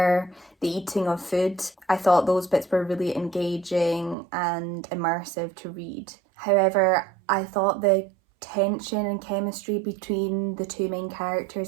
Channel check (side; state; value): left; drops out; at 4.2 s